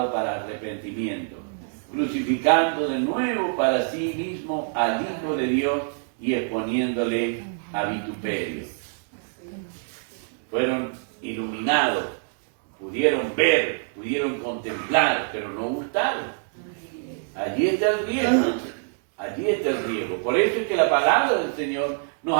para arrepentimiento, crucificando de nuevo para sí mismo al Hijo de Dios y exponiéndole a vituperio. Fueron iluminados, pudieron ver, pudieron contemplar, pero no gustaron. Allí está el riesgo, allí está el riesgo. Por eso es que la palabra del Señor nos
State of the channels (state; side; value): silent; left; digital silence